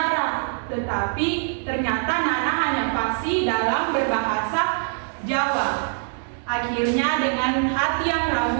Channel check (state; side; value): silent; left; digital silence